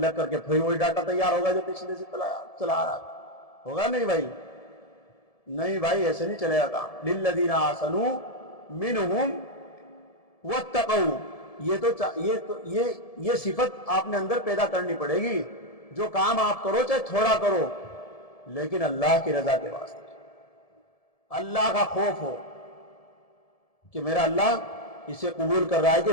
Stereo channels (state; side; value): late; right; 1.7 ms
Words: لگ کر کے پھر وہی ڈاٹا تیار ہوگا جو پچھلے سے چلا آ رہا تھا، ہوگا نہیں بھائی؟ نہیں بھائی، ایسے نہیں چلے گا کام۔ للذین احسنوا منہم واتقوا، یہ صفت آپ نے اندر پیدا کرنی پڑے گی، جو کام آپ کرو چاہے تھوڑا کرو لیکن اللہ کی رضا کے واسطے، اللہ کا خوف ہو کہ میرا اللہ اسے قبول کر رہا ہے کہ